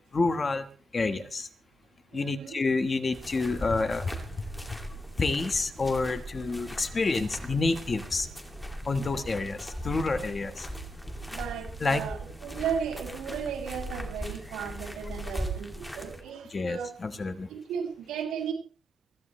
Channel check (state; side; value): normal; both; correlation 0.86